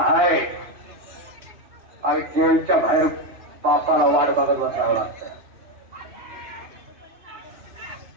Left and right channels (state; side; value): late; left; 3.1 ms